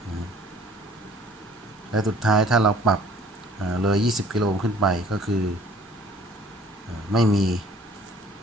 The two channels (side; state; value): both; normal; correlation 0.54